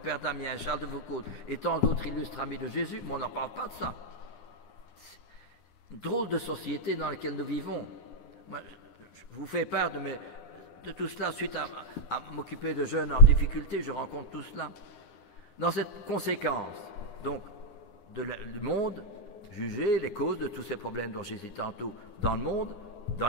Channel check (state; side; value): late; right; 9.7 ms